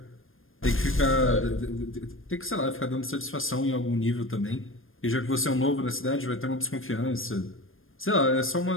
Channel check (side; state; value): right; late; 0.59 ms